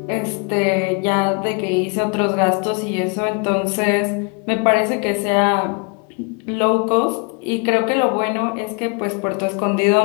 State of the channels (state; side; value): quieter; right; 34.2 dB